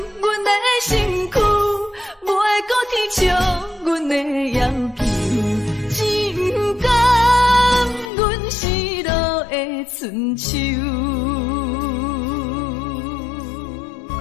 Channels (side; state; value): right; drops out; at 8.1 s